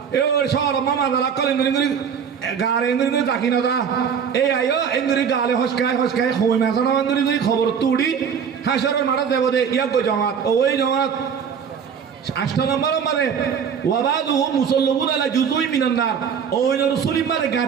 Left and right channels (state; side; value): quieter; left; 7.2 dB